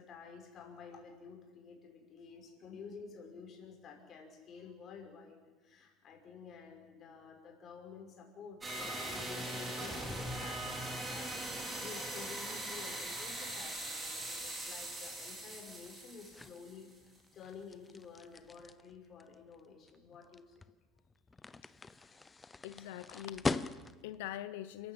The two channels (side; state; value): both; normal; correlation 0.67